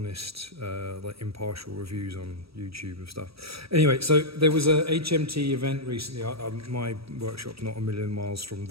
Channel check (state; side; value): late; left; 0.76 ms